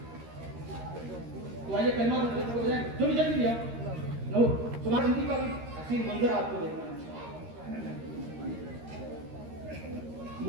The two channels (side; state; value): left; late; 13 ms